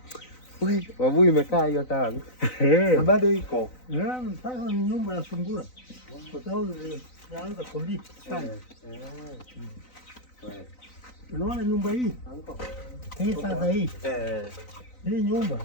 Wewe, babu, imekaa hiyo tanki. Na bado iko. Sasa ni nyumba ya Zungura. Kwa sababu ilianza kuliki sana. Unaona nyumba hii? Hii sasa hii. Hii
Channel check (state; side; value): late; right; 3.9 ms